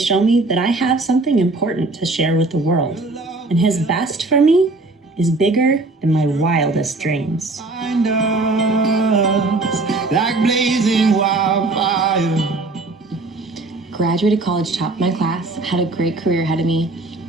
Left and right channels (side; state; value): left; quieter; 3.2 dB